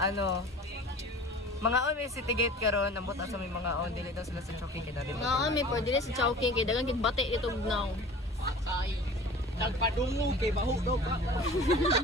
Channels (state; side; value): normal; both; correlation 0.42